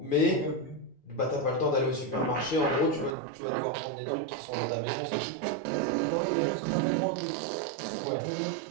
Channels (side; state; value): left; drops out; at 3.2 s